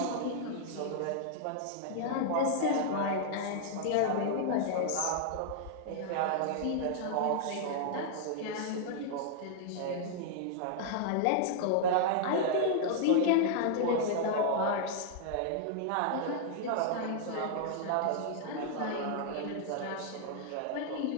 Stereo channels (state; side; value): different; both; correlation -0.01